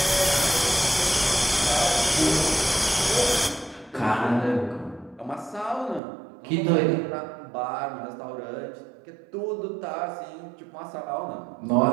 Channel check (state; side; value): drops out; left; at 6.0 s